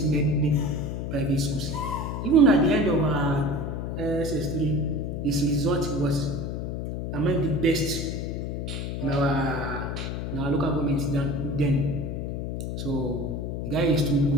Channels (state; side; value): noise; left; hum, 3 dB below the sound